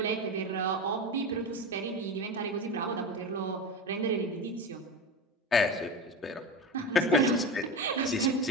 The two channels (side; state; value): both; normal; correlation 0.23